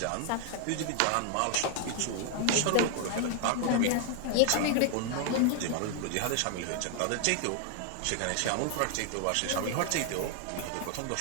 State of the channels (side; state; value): both; different; correlation 0.01